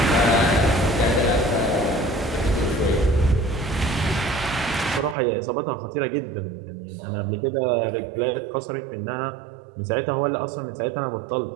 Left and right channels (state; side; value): drops out; left; at 5.2 s